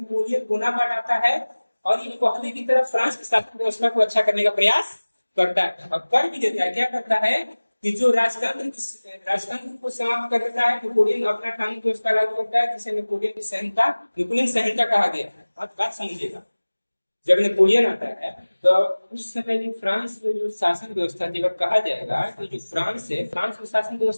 बोनापार्ट आता है और ये पहले की तरह फ्रांस की शासन व्यवस्था को अच्छा करने का प्रयास करता है और कर भी देता है। क्या करता है कि जो राजतंत्र को समाप्त कर देता है, नेपोलियन अपना कानून व्यवस्था लागू करता है, जिसे नेपोलियन संहिता कहा गया है। आप बात समझिएगा, जब नेपोलियन आता है तो उस समय जो फ्रांस में जो शासन व्यवस्था थी, अगर कहा जाएगा कि जो फ्रांस है, फ्रांस में शासन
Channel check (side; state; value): both; inverted; correlation -1.00